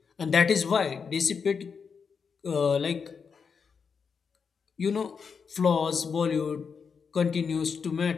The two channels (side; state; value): right; quieter; 5.9 dB